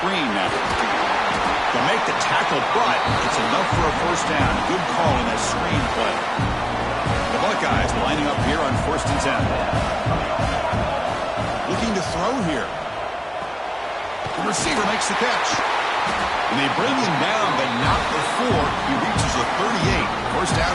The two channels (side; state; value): both; identical; correlation 1.00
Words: now. They'll make the tackle, but it's enough for a first down. Good call in that screen play. The Buckeyes lining up here on 1st and 10. Looking to throw here. The receiver makes the catch. And they bring him down, but not before he reaches the 38. First